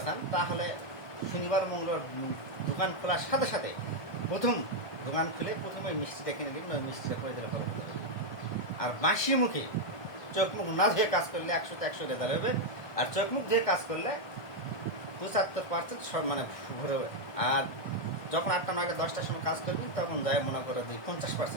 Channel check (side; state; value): right; late; 1.7 ms